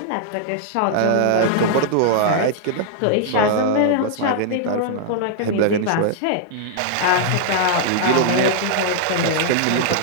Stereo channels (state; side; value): different; both; correlation -0.01